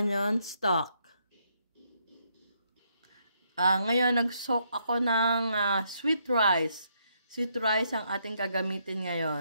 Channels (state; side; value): inverted; both; correlation -0.75